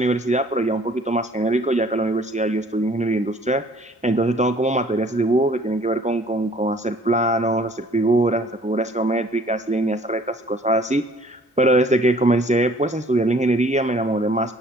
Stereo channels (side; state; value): both; normal; correlation 0.55